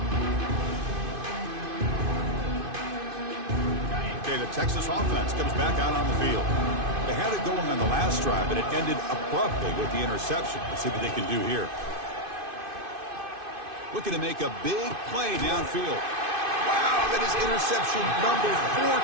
Okay, the Texas offense comes back out on the field. They had it going on the last drive, but it ended abruptly with the interception. Let's see what they can do here. Looking to make a big play downfield. Wow, that is interception number 4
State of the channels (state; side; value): late; left; 2.5 ms